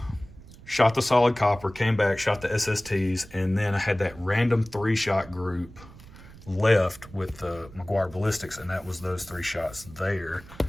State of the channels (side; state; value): right; noise; rumble, 19 dB below the sound